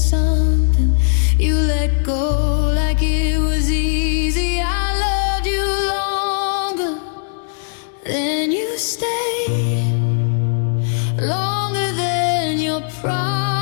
You let go like it was easy. I loved you longer than you stayed, longer than your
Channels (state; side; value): silent; right; digital silence